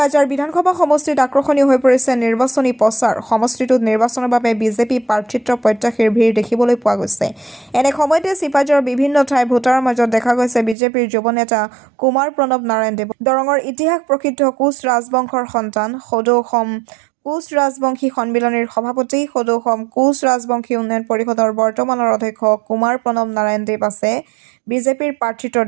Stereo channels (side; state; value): left; drops out; at 10.8 s